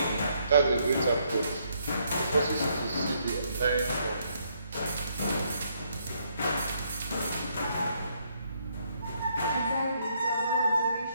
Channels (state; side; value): inverted; both; correlation -0.72